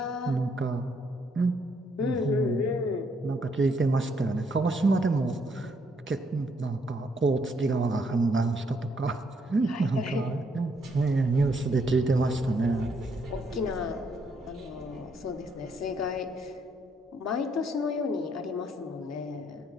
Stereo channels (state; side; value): normal; both; correlation 0.72